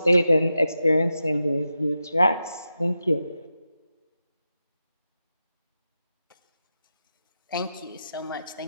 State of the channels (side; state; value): both; inverted; correlation -0.90